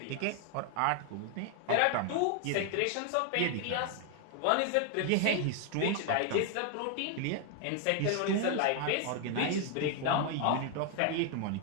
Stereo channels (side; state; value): both; different; correlation 0.00